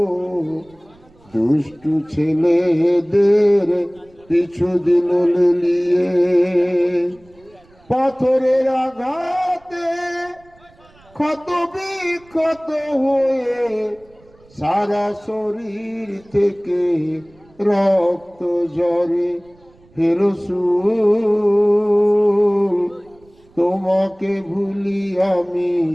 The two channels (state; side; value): noise; right; rumble, 29 dB below the sound